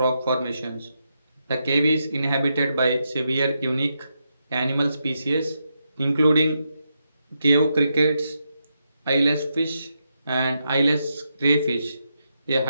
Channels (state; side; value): inverted; both; correlation -0.83